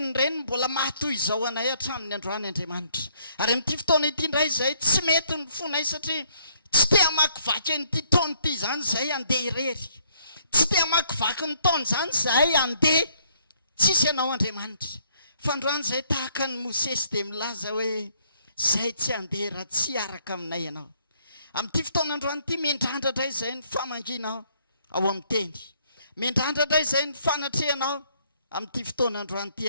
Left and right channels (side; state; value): both; inverted; correlation -0.68